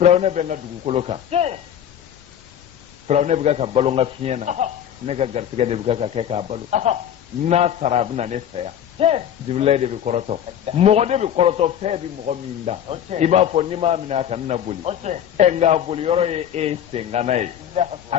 be na dugukolo kan Firawna be ka balonga fiena ne ka gartiga de buka ka kɛ k'a balo n'a sara a bɛna ne fɛ yan Jibrila de bɛ kɔrɔtɔ mɔgɔ de bɛ kɔrɔtɔ fɛn bɛ mɔgɔ min da i b'a fɔ n'i m'a minɛ a kan na boli nka boli yɔrɔ ye e sengana ye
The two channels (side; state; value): right; quieter; 9.8 dB